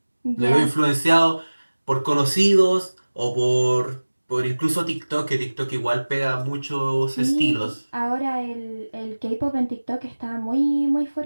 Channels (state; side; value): inverted; both; correlation -1.00